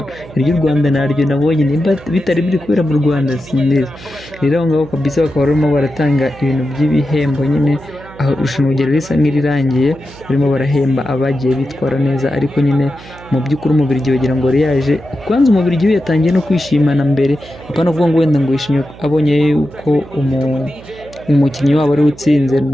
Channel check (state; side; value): noise; right; hum, 19 dB below the sound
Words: iry'u Rwanda naryo nabonye, nimba bitari biri kubera mu Rwanda sinzi. Rero aho ngaho kabisa bakaba barimo baratanga ibintu by'ibihembo nyine, aho irushanwa ryari risa nk'irirangiye barimo barahemba abagiye bitwara neza. Ariko nyine mu by'ukuri Umubiligi wagira ngo yari yaje kwanza. Umubiligi we yatangiye no kwishimana mbere, apana kuvuga ngo wenda ngo yishimye abonye yuko umukinnyi wabo ari utsinze.